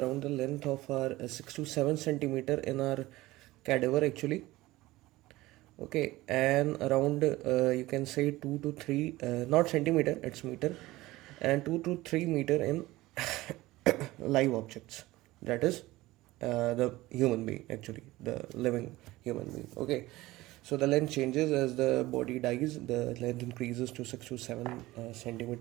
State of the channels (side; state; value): left; quieter; 18.4 dB